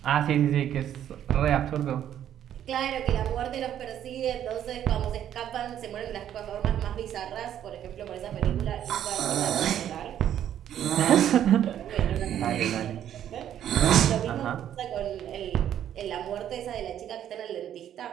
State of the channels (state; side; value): quieter; left; 10.5 dB